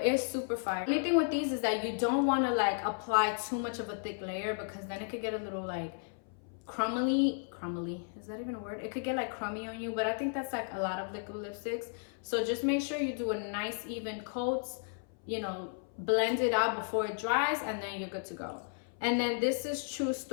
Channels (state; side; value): silent; right; 55 dB below the other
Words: it's super fire. The only thing with these is that you don't want to like apply too much of a thick layer, because then it could get a little like crumbly, is that even a word? It could get like crummy on you, but I think that's like a lot of liquid lipsticks. So just make sure you do a nice even coats you know, blend it out before it dries, and then you're good to go. And then this is True